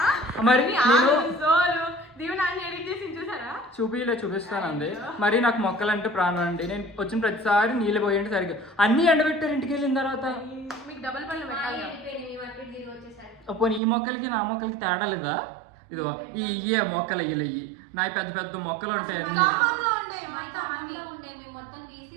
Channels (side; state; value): left; drops out; at 13.8 s